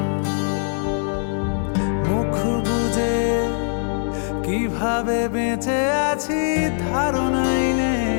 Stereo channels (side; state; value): right; silent; digital silence